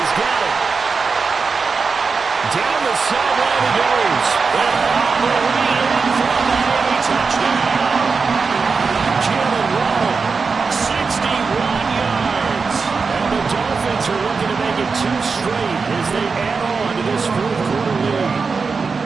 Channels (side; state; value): left; quieter; 4.8 dB